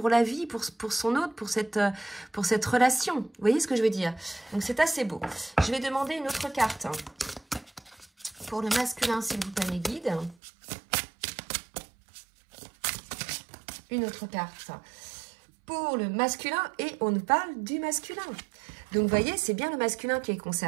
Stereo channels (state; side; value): drops out; left; at 10.4 s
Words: la vie, pour son autre, pour cette relation. Vous voyez ce que je veux dire? Donc, c'est assez beau. Je vais demander une autre carte. Pour le masculin, s'il vous plaît, mes guides. Une autre carte. Pour le masculin, et on nous parle du masculin. Donc, vous voyez, c'est bien le masculin qui est